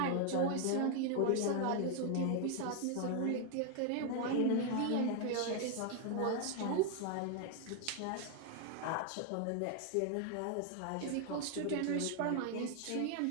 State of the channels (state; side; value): different; both; correlation 0.00